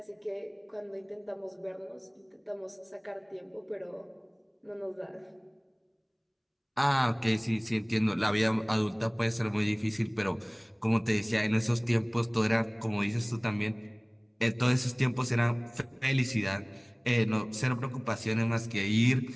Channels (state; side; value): identical; both; correlation 1.00